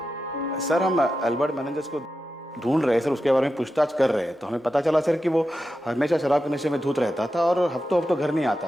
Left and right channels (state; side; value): normal; both; correlation 0.90